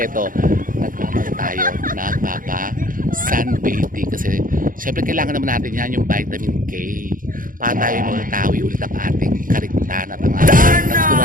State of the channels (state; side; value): late; left; 0.40 ms